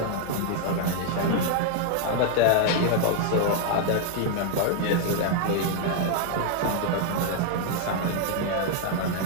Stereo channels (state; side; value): different; both; correlation 0.00